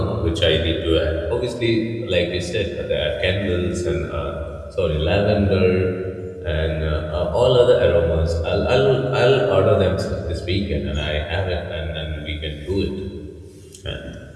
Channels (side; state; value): both; identical; correlation 1.00